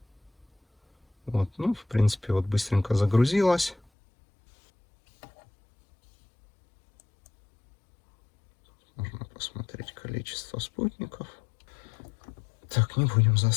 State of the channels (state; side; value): drops out; right; at 3.8 s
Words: Вот, ну, в принципе, вот быстренько загрузилась. Можно посмотреть количество спутников. Так, не будем